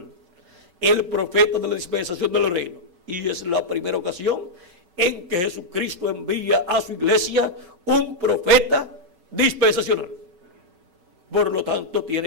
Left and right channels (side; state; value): left; late; 5.8 ms